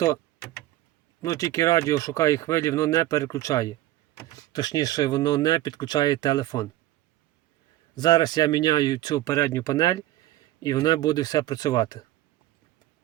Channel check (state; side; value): quieter; left; 15.3 dB